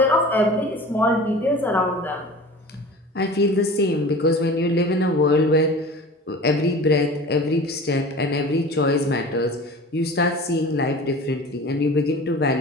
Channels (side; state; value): both; normal; correlation 0.39